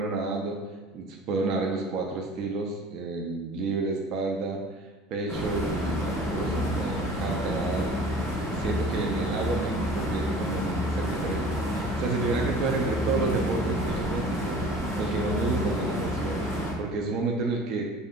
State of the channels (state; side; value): normal; both; correlation 0.45